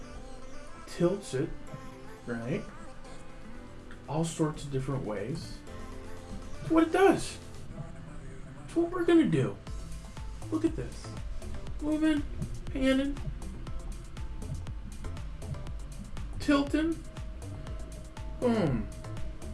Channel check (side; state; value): both; identical; correlation 1.00